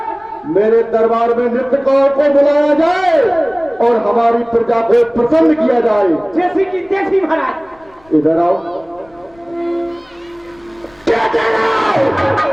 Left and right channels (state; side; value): noise; left; rumble, 30 dB below the sound